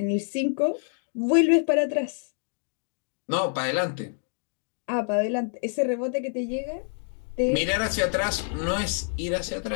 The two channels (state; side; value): silent; right; 60 dB below the other